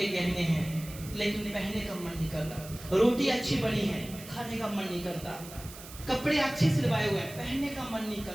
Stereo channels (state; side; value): noise; right; hiss, 15 dB below the sound